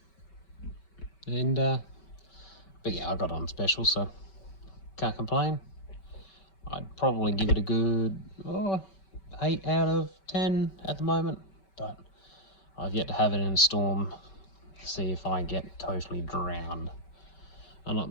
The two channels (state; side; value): late; right; 5.2 ms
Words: And but yeah, I got it on special, so can't complain. I'd probably give it a good 8 out of 10 at the moment, but I've yet to have it in a storm to see if I get totally drowned. Unlike